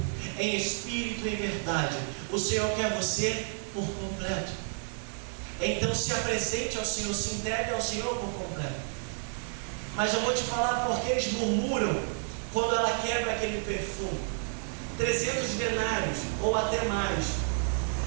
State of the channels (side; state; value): left; silent; 57 dB below the other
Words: Em espírito e em verdade. O Senhor quer você por completo. Então se apresente ao Senhor, se entregue ao Senhor por completo. Mas eu vou te falar porque eles murmuram quando ela quebra aquele perfume. 300 denários ou até mais.